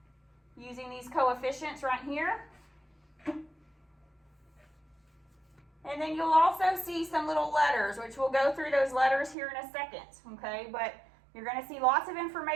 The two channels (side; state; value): left; drops out; at 9.3 s